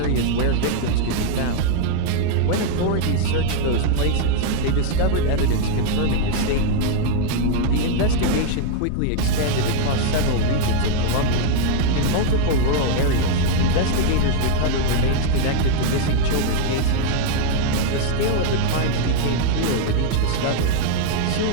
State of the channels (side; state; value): both; different; correlation 0.00